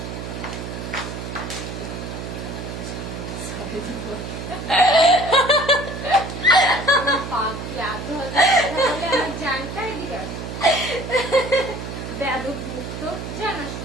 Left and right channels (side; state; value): right; noise; hum, 7 dB below the sound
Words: পাখি আধো তাহলে আমার জানটাই দিগাস বেদব মুক্ত জানা